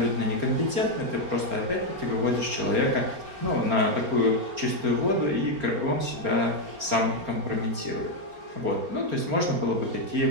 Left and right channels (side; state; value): left; late; 4.3 ms